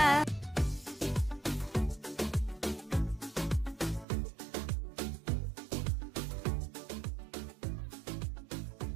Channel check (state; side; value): drops out; left; at 4.0 s